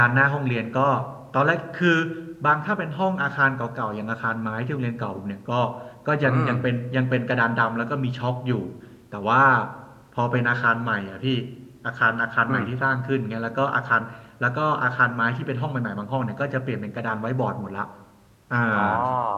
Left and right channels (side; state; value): both; identical; correlation 1.00